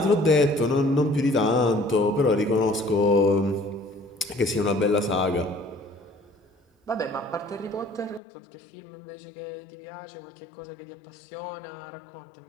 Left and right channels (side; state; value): right; drops out; at 8.2 s